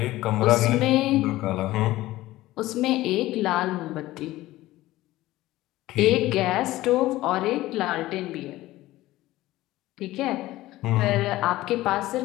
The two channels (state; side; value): quieter; right; 16.9 dB